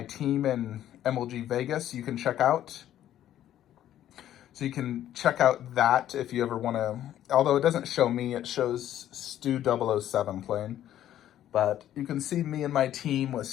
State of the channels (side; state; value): right; quieter; 11.9 dB